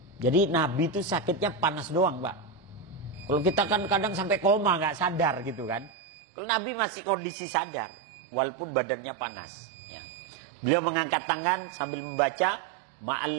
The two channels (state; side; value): drops out; left; at 5.9 s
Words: Jadi Nabi itu sakitnya panas doang, Pak. Kalau kita kan kadang sampai koma nggak sadar gitu kan. Kalau Nabi masih kondisi sadar walaupun badannya panas. Ya. Beliau mengangkat tangan sambil membaca